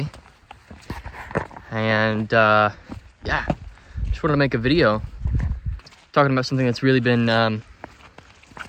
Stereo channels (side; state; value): both; identical; correlation 1.00